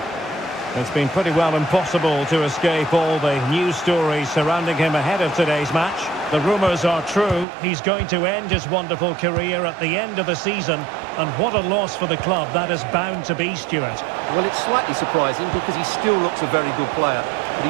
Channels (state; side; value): drops out; left; at 7.5 s